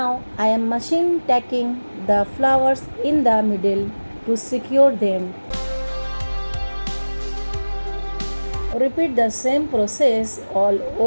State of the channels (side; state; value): both; inverted; correlation -1.00